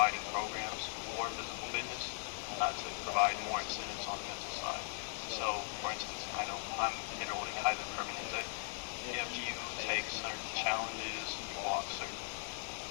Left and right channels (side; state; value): right; silent; digital silence